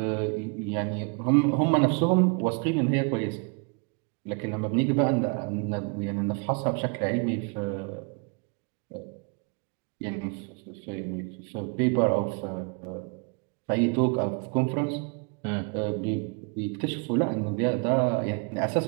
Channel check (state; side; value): quieter; left; 34.9 dB